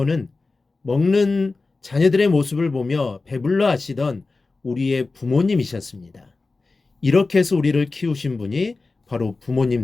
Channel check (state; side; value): quieter; right; 3.7 dB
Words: 먹는 자녀들의 모습을 보며 배불러 하시던 우리의 부모님이셨습니다. 이렇게 해서 우리를 키우신 분이 바로